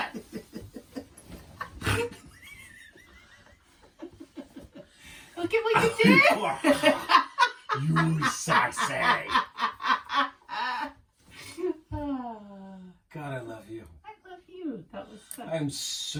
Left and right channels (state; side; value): identical; both; correlation 1.00